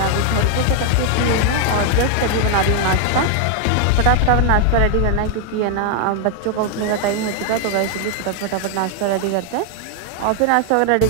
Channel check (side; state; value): both; different; correlation 0.00